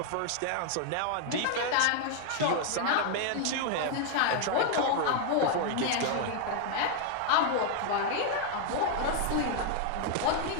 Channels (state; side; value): different; both; correlation 0.00